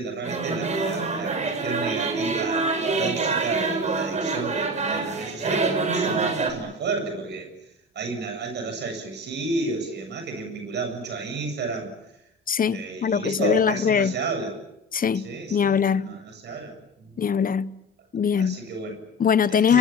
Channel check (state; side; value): normal; both; correlation 0.30